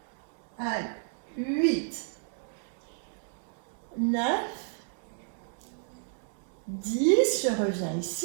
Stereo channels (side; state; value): left; silent; digital silence